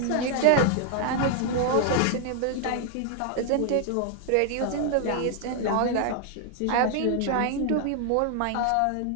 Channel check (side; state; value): both; different; correlation 0.00